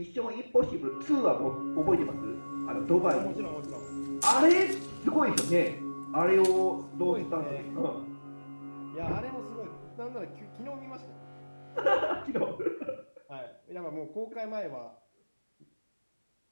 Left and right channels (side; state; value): both; inverted; correlation -1.00